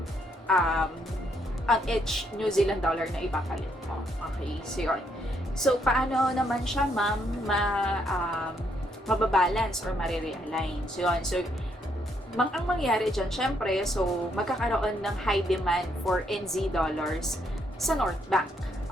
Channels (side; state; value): both; normal; correlation 0.73